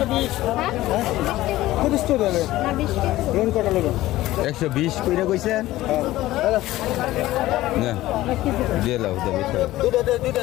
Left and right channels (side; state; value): right; quieter; 16.3 dB